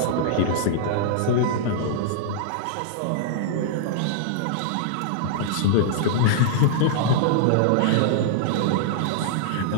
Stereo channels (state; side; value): different; both; correlation -0.01